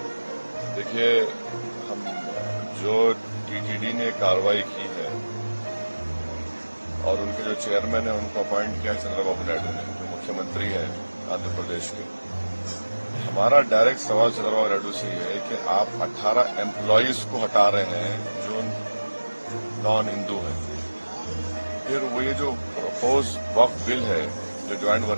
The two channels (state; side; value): inverted; both; correlation -1.00